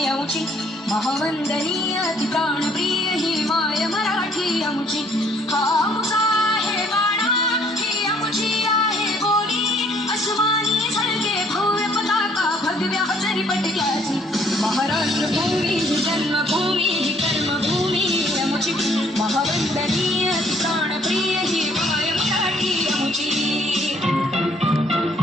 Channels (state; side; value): normal; both; correlation 0.62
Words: अमुची महावंदनीय अति प्राणप्रिय हिमाय मराठी अमुची हा अमुचा आहे बाणा ही अमुची आहे बोली अस्मानी झळके भव्य पताका भगव्या जरी पटक्याची महाराष्ट्र भूमी जन्मभूमी कर्मभूमी अमुची महावंदनीय अति प्राणप्रिय हिमाय मराठी अमुची